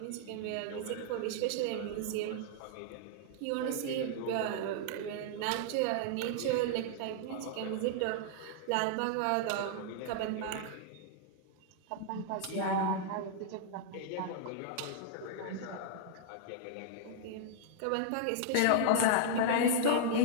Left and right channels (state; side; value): different; both; correlation -0.01